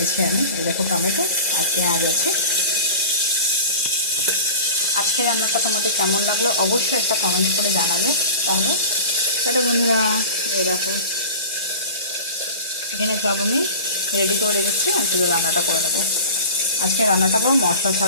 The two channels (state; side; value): inverted; both; correlation -0.37